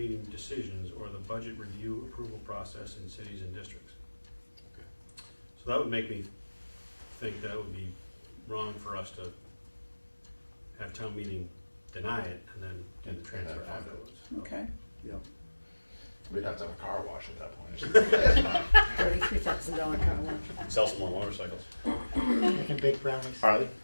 decisions or the budget review approval process in cities and districts. So that would make me think that would be wrong for us to have town meeting deny it and then do the transfer And then fund it. afterwards. okay. yeah. We'd have to have a car wash at that point. $33,000 car wash. Sell some more motorcycles. Making baked brownies. Harley?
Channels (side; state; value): both; inverted; correlation -1.00